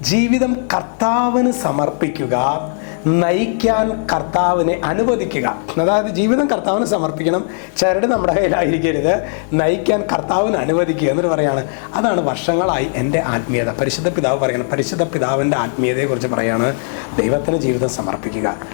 ജീവിതം കർത്താവിന് സമർപ്പിക്കുക, നയിക്കാൻ കർത്താവിനെ അനുവദിക്കുക. അതായത് ജീവിതം കർത്താവിന് സമർപ്പിക്കണം, ചരട് നമ്മുടെ കയ്യിലായിരിക്കരുത്, നയിക്കാൻ കർത്താവിന് അനുവദിക്കുക എന്നൊരു പറയാണ്. അതാണ് വർഷങ്ങളായി എൻ്റെ ആത്മീയത. പരിശുദ്ധ പിതാവ് പറയണം, പരിശുദ്ധ പിതാവിൻ്റെ ആത്മീയതയെക്കുറിച്ച് പറയാണ്, ദൈവത്തിന് ജീവിതം സമർപ്പിക്കുക,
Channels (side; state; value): right; silent; 64 dB below the other